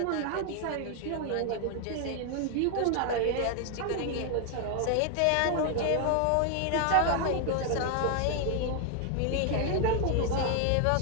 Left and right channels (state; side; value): different; both; correlation 0.01